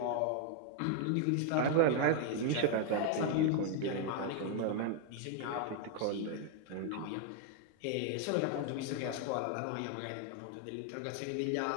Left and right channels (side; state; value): both; different; correlation 0.00